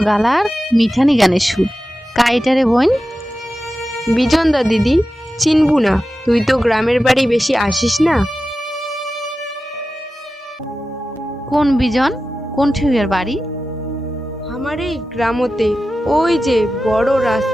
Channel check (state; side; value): normal; both; correlation 0.93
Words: গালার মিঠানি গানের সুর। কায় এটা রে বোন? বিজন দা দিদি, চিনবু না, তুই তো গ্রামের বাড়ি বেশি আসিস না। কোন বিজন? কোন ঠিউয়ের বাড়ি? আমার এই গ্রামতে, ওই যে বড়